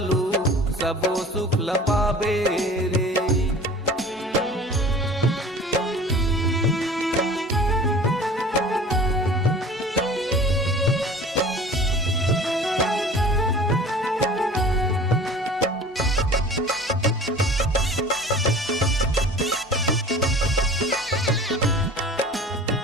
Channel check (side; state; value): both; normal; correlation 0.43